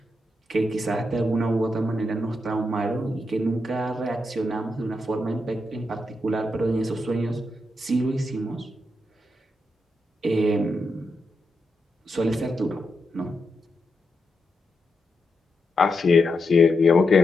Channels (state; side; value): normal; both; correlation 0.85